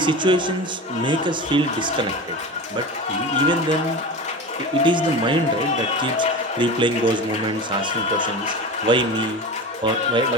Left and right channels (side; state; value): both; normal; correlation 0.29